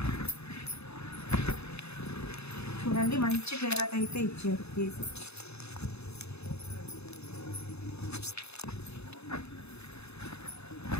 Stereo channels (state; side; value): late; right; 0.79 ms